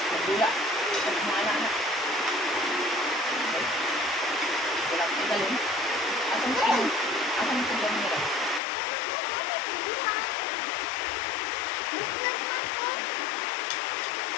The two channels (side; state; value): right; drops out; at 8.6 s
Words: magdula. Sa mga anak-anak. Okay? Wala ko galing. Asan ka yun? Asan ka dyan nila?